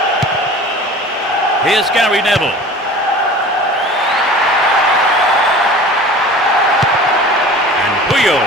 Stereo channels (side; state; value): both; normal; correlation 0.41